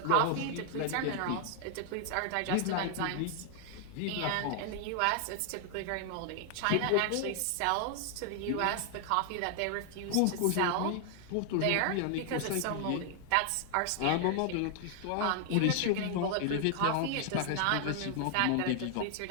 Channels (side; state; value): both; different; correlation 0.00